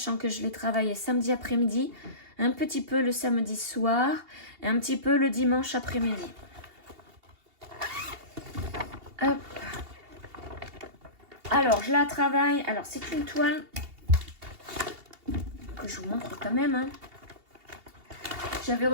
que je l'ai travaillé samedi après-midi, un petit peu le samedi soir et un petit peu le dimanche après-midi. Hop. Alors, je la travaille. Alors, c'est une toile que je vous montre quand même. Hein. J'avais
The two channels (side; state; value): left; late; 2.8 ms